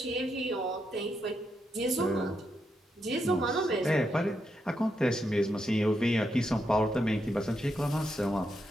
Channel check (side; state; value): both; normal; correlation 0.82